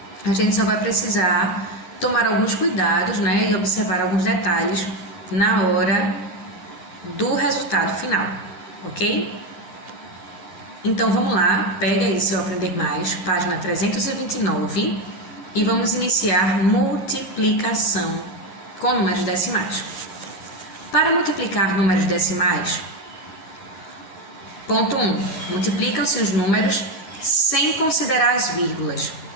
a gente só vai precisar tomar alguns cuidados, né, e observar alguns detalhes na hora do resultado final, ok? Então vamos lá, pega aí seu Aprender Mais, página 329, e vamos iniciar multiplicação com números decimais. Para multiplicar números decimais, ponto 1, multiplicam-se os números sem considerar as vírgulas.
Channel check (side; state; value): right; late; 9.8 ms